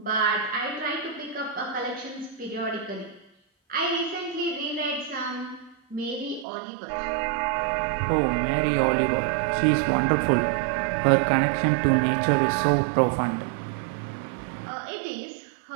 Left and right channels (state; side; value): drops out; left; at 6.5 s